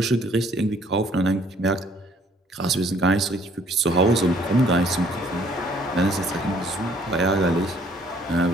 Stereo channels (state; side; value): normal; both; correlation 0.61